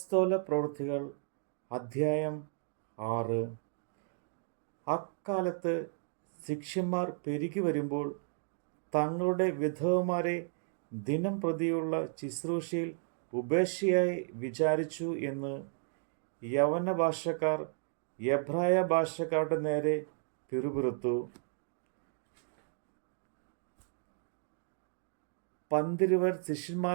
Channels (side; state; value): left; silent; digital silence